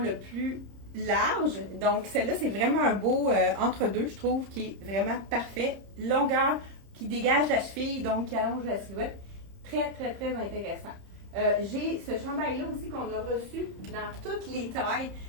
plus large. Donc, celle-là, c'est vraiment un beau entre-deux, je trouve, qui est vraiment parfait. Longueur qui dégage la cheville, donc qui allonge la silhouette. Très, très, très intéressant. J'ai ce chandail-là aussi qu'on a reçu dans toutes les tailles.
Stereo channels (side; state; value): left; late; 30 ms